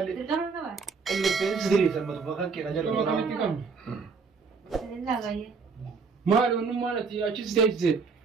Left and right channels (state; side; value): quieter; left; 4.9 dB